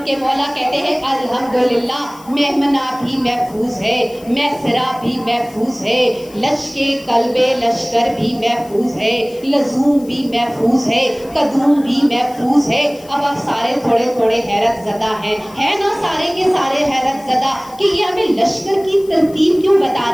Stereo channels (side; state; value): left; noise; hiss, 23 dB below the sound